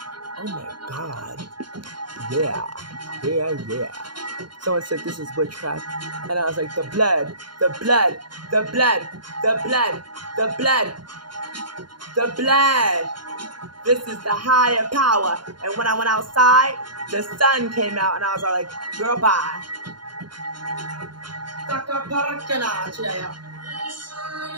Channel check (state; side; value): late; left; 0.71 ms